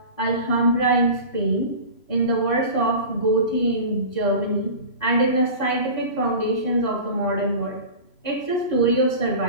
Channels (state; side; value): late; right; 3.0 ms